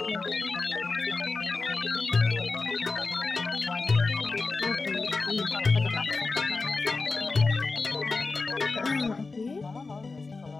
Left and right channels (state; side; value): quieter; right; 3.9 dB